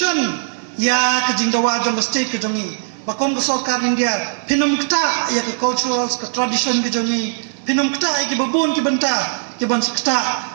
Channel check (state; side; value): silent; left; digital silence